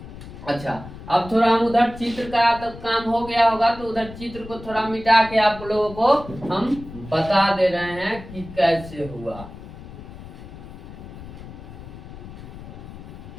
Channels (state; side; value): noise; left; rumble, 14 dB below the sound